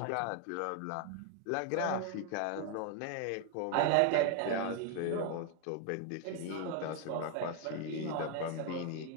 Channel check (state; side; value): different; both; correlation 0.01